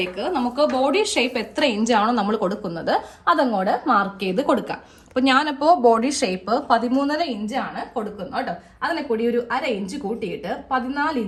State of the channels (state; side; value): identical; both; correlation 1.00